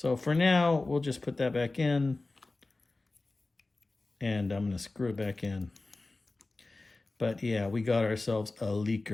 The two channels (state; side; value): quieter; right; 3.2 dB